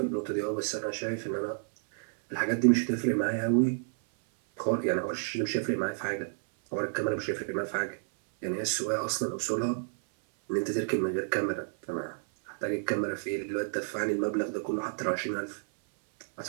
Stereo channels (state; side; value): silent; left; 58 dB below the other